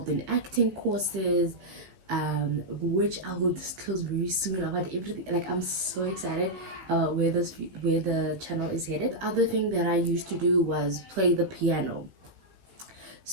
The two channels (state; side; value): late; left; 16 ms